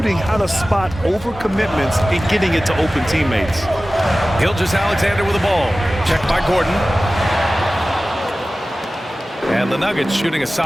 how to spot overcommitments and getting it to open teammates. Gilgeous-Alexander with the ball. Checked by Gordon. And the Nuggets shooting a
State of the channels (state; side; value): normal; both; correlation 0.96